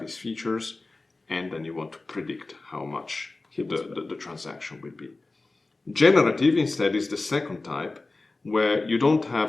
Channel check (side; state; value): right; quieter; 3.3 dB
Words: his features, and then you want to predict how much the transaction will be. Generative, instead, is the second type, where you don't